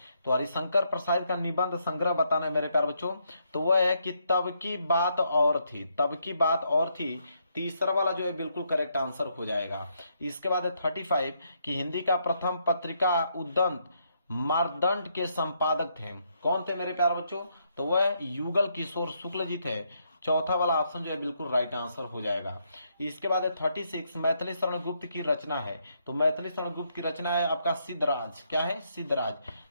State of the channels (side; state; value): both; inverted; correlation -0.76